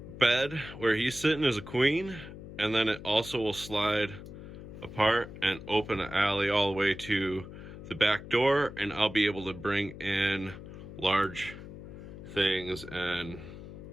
bed where he's sitting is a queen, and then it also will slide apart and open an alley all the way to the back door, and I'll be able to bring in large things and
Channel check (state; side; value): noise; left; hum, 13 dB below the sound